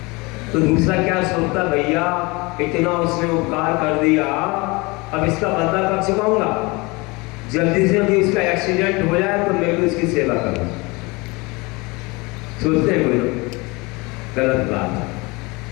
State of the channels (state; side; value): quieter; right; 25.5 dB